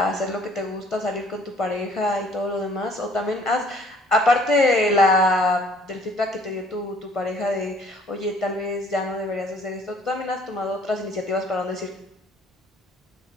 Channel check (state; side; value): normal; both; correlation 0.57